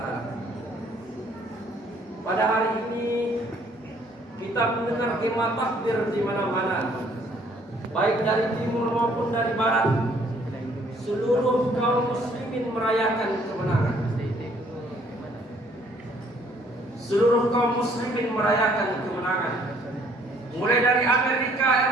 Pada hari ini kita mendengar kemah takbir di mana-mana, baik dari timur maupun dari barat. Seluruh kaum muslimin merayakan kemenangan. Seluruh kaum muslimin merayakan kemenangan. Mulai dari Amerika,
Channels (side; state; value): both; normal; correlation 0.62